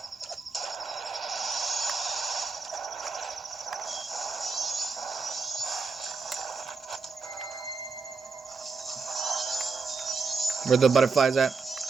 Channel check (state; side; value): quieter; left; 4.6 dB